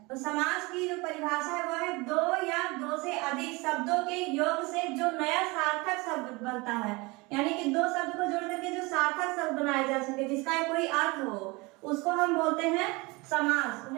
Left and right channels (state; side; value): quieter; left; 25.0 dB